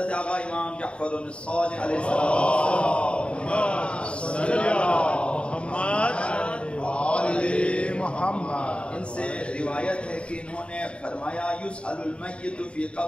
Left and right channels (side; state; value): right; late; 0.057 ms